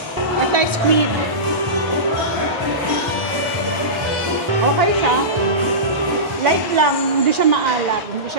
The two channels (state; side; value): normal; both; correlation -0.20